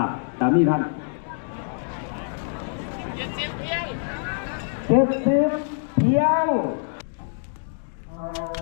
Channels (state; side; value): silent; right; digital silence